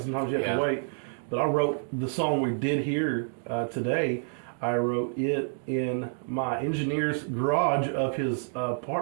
you have to wait. But I wrote the song we did here today. I wrote it in my engineer's garage of his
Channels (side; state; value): left; silent; digital silence